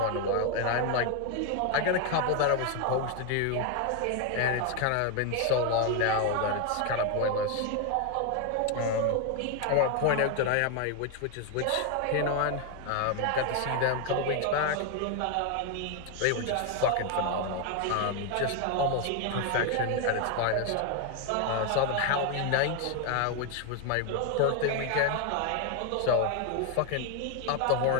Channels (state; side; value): different; both; correlation 0.01